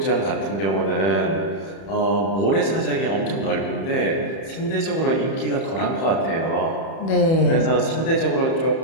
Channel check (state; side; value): late; right; 31 ms